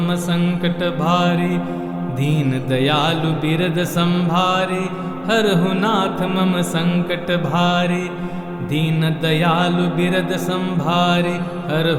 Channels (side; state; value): left; noise; hum, 26 dB below the sound